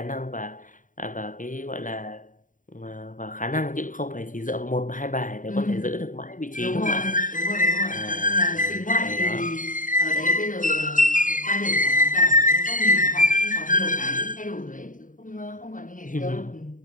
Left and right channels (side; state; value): right; late; 0.38 ms